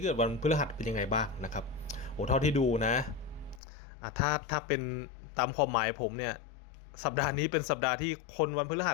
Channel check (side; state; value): right; drops out; at 3.6 s